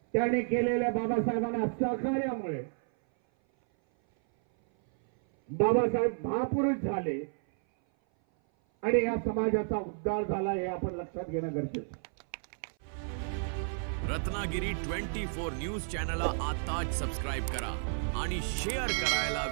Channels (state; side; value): silent; left; 57 dB below the other